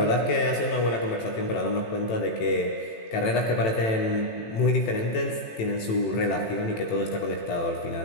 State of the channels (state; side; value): late; right; 18 ms